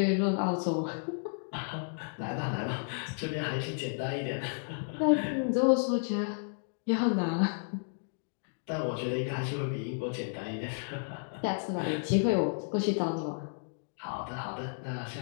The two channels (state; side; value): silent; right; digital silence